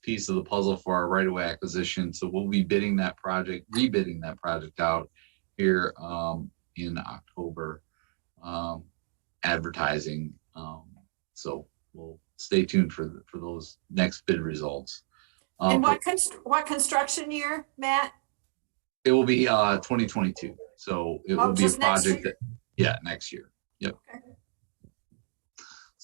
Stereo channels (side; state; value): left; silent; digital silence